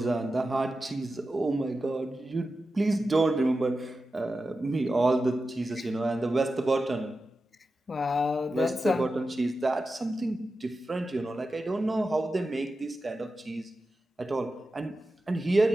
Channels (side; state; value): both; normal; correlation 0.92